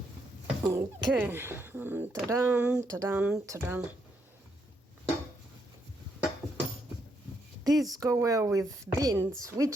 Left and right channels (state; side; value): normal; both; correlation 0.76